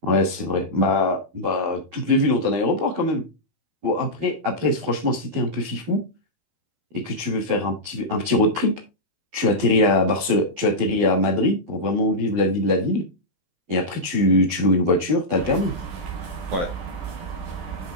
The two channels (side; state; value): left; late; 12 ms